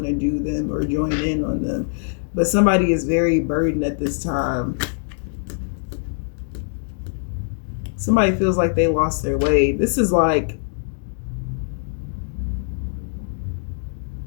to do them or join in on them. But somebody is very burdened at this time. Somebody feels like they lost their way. This is like,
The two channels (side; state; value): right; silent; digital silence